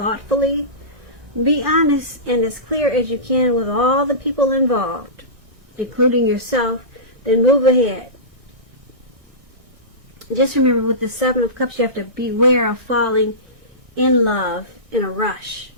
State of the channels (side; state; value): left; late; 1.6 ms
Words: Be honest and as clear as you can with all the people involved, including yourself, then move ahead. Just remember, with the 7 of Cups, you have to beware of falling in love in a rush,